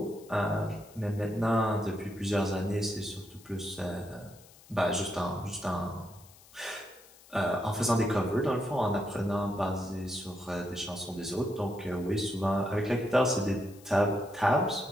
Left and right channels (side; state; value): left; noise; hiss, 24 dB below the sound